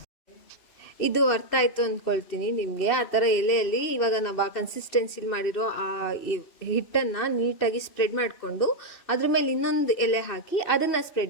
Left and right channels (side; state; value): right; late; 2.6 ms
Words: ಇದು ಅರ್ಥ ಆಯಿತು ಅಂದ್ಕೊಳ್ತೀನಿ ನಿಮಗೆ. ಆ ಥರ ಎಲೆಯಲ್ಲಿ ಇವಾಗ ನಾವು ಆ ಕನ್ಸಿಸ್ಟೆನ್ಸಿಲಿ ಮಾಡಿರೋ ಆ ಹಿಟ್ಟನ್ನು ನೀಟಾಗಿ ಸ್ಪ್ರೆಡ್ ಮಾಡಿಕೊಂಡು ಅದ್ರ ಮೇಲೆ ಇನ್ನೊಂದು ಎಲೆ ಹಾಕಿ ಅದನ್ನು